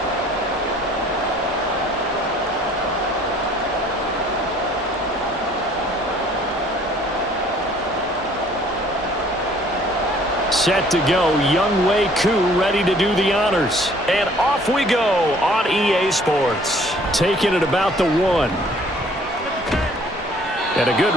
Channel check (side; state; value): both; normal; correlation 0.56